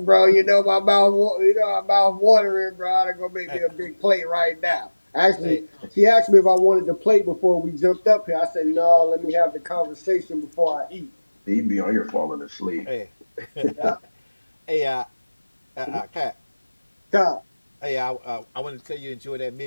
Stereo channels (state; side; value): inverted; both; correlation -1.00